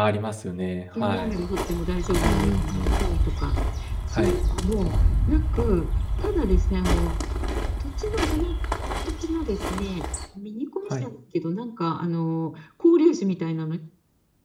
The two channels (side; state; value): both; identical; correlation 1.00